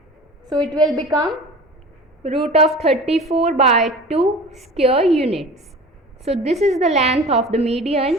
So it will become root of 34 by 2 square units. So this is the length of the median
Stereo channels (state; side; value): normal; both; correlation 0.38